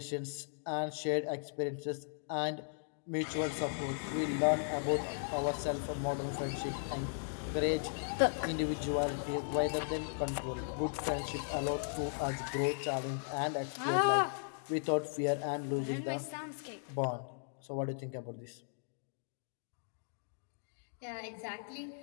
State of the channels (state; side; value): silent; right; digital silence